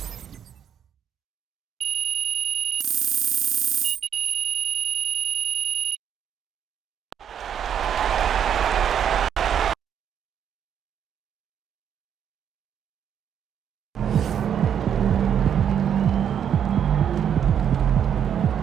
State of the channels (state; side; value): quieter; left; 8.8 dB